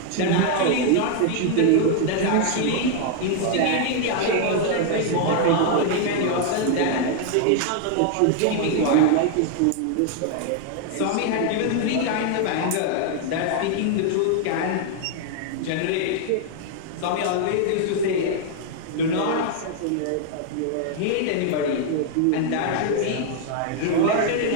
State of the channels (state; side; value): different; both; correlation 0.00